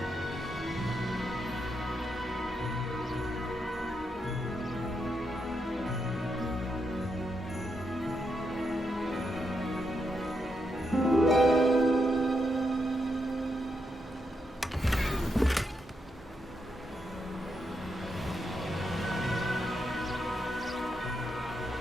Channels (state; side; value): normal; both; correlation 0.82